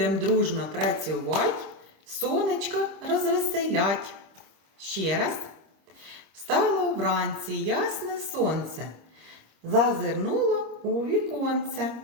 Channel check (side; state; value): left; late; 26 ms